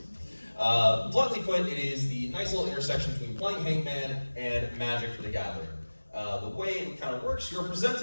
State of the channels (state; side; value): inverted; both; correlation -1.00